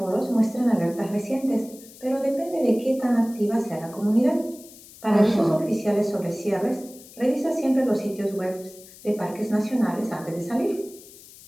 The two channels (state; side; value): noise; left; hiss, 20 dB below the sound